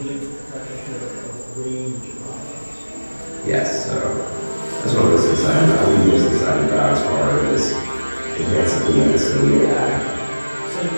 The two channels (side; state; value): both; inverted; correlation -1.00